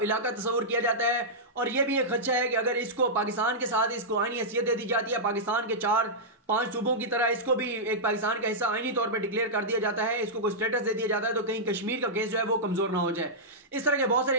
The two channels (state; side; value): normal; both; correlation -0.10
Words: इलाका तस्वुर किया जाता है, और यह भी एक खदशा है कि अगर इसको पाकिस्तान के साथ इसको आईनी हैसियत दे दी जाती है, पाकिस्तान के 4-5 सूबों की तरह इसको भी एक पाकिस्तान का हिस्सा आईनी तौर पर डिक्लेयर कर दिया जाता है, इसको कोई स्टेटस दे दिया जाता है, तो कहीं कश्मीर का केस जो है वो कमजोर ना हो जाए। इस तरह के बहुत सारे